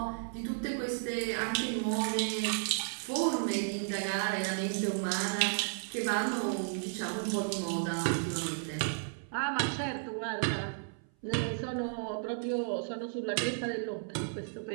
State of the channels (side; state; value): left; silent; 55 dB below the other